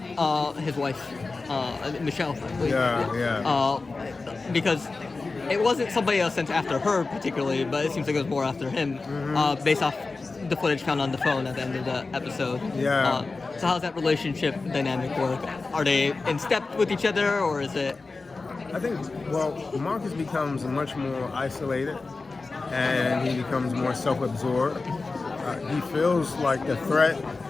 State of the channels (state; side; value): quieter; right; 3.8 dB